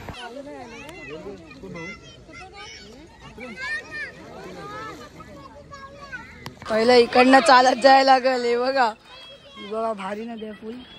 पहिलं इकडनं चालत जायला लागल हे बघा बघा भारी नदी आहे फुल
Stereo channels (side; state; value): both; identical; correlation 1.00